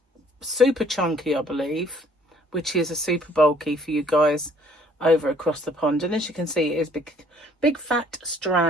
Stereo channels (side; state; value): both; normal; correlation 0.59